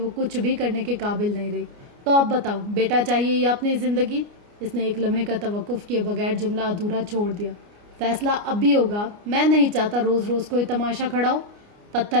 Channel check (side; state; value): left; late; 29 ms